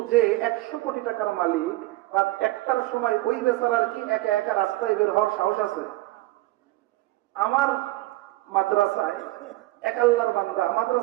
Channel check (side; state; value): left; quieter; 18.7 dB